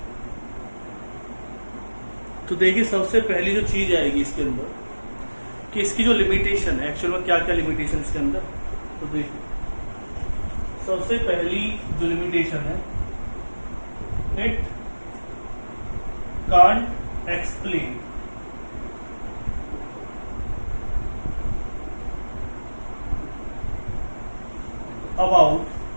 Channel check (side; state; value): both; inverted; correlation -1.00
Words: तो देखिए, सबसे पहली जो चीज आएगी इसके अंदर कि इसकी जो लिमिटेशन है, एक्चुअल में क्या क्या लिमिटेशन इसके अंदर। तो देखिए, सबसे पहली जो लिमिटेशन है, it can't explain about